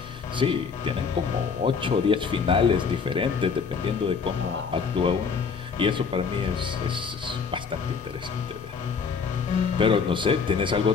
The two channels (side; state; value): right; quieter; 5.7 dB